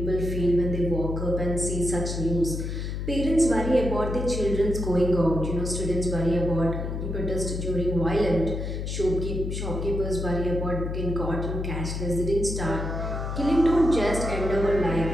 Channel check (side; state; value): left; noise; hum, 4 dB below the sound